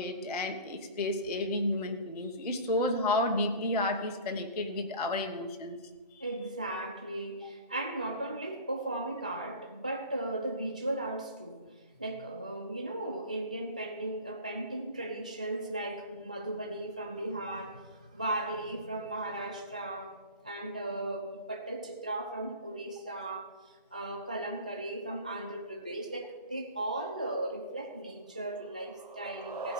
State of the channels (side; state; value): both; inverted; correlation -0.39